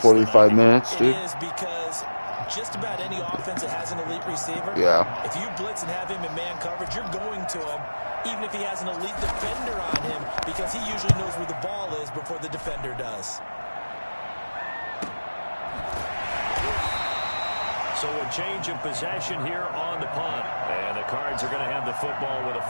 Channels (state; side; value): inverted; both; correlation -1.00